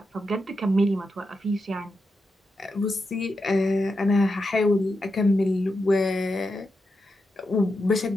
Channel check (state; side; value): normal; both; correlation 0.87